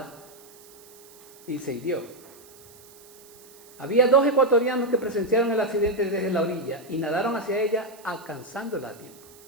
y se hirió. Había 2 ecuatorianos que presenciaron el accidente desde la orilla y nadaron hacia ella alcanzándola a tiempo.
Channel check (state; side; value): noise; right; hiss, 23 dB below the sound